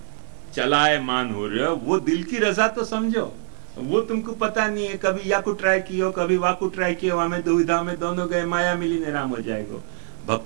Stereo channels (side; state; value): left; silent; digital silence